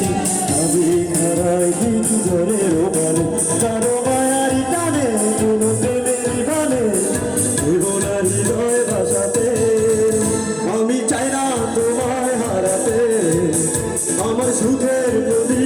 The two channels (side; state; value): both; identical; correlation 1.00